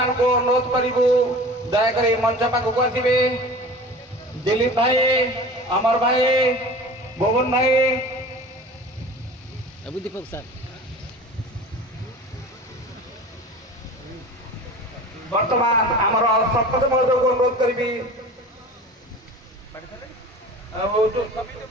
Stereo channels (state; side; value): normal; both; correlation 0.39